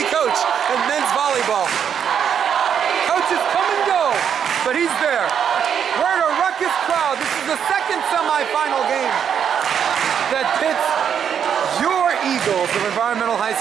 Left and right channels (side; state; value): left; quieter; 8.1 dB